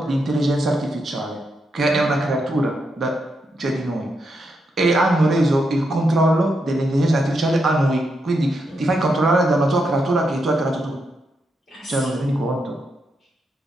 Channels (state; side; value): normal; both; correlation 0.82